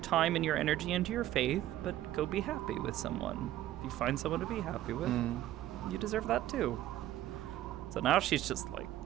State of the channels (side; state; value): left; quieter; 13.8 dB